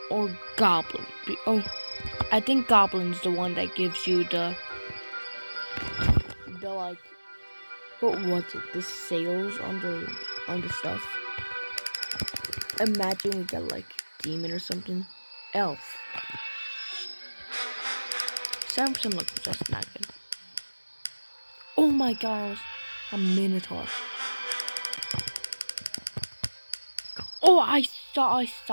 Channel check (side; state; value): both; inverted; correlation -1.00